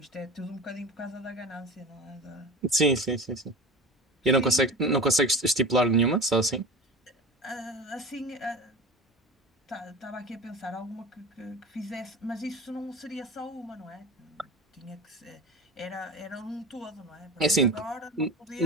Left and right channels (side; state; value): both; normal; correlation 0.33